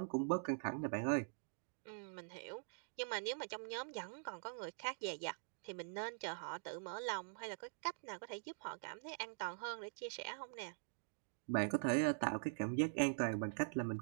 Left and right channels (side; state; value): left; silent; digital silence